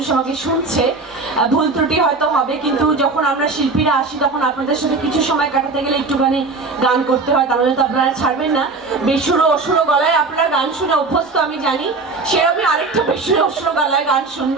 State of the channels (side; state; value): left; quieter; 3.8 dB